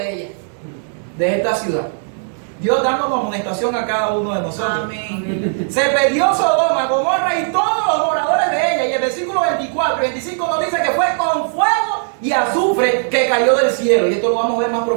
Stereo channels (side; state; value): left; silent; 68 dB below the other